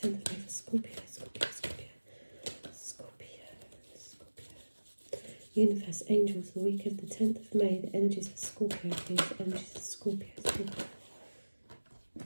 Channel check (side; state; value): both; inverted; correlation -1.00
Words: 10th of May for Scorpio. Universe, angels, the week of the 10th of May. The energies for Scorpio, please. The energies for Scorpio.